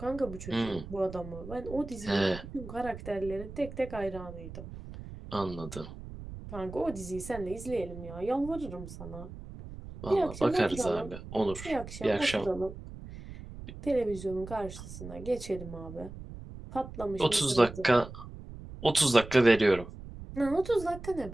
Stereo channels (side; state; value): right; noise; rumble, 12 dB below the sound